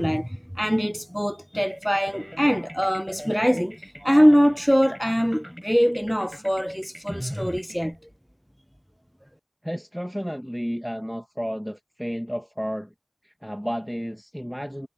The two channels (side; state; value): both; identical; correlation 1.00